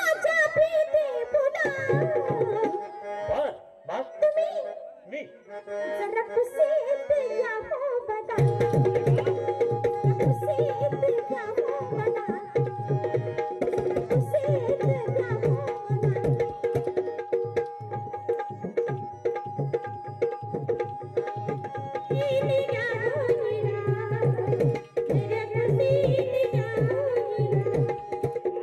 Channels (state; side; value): identical; both; correlation 1.00